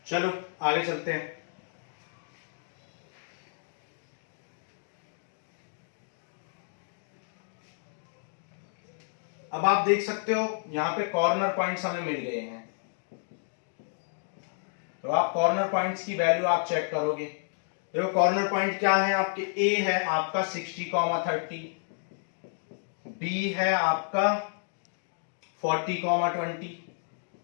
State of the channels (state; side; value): silent; right; digital silence